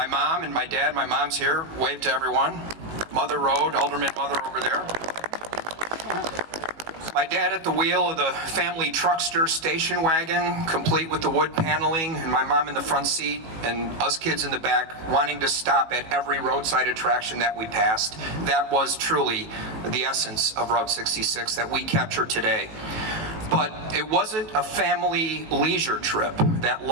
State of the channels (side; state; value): left; late; 18 ms